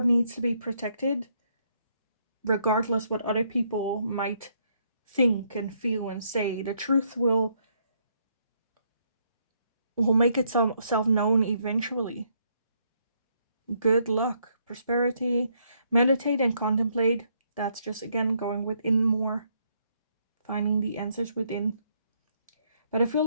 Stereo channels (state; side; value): inverted; both; correlation -0.73